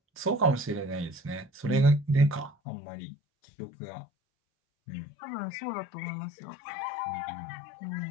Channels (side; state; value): right; drops out; at 2.6 s